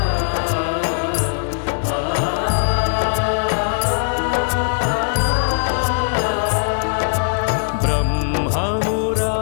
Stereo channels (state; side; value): silent; right; digital silence